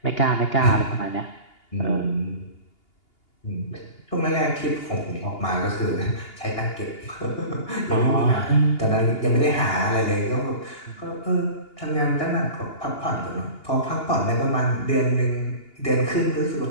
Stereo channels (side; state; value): right; late; 2.8 ms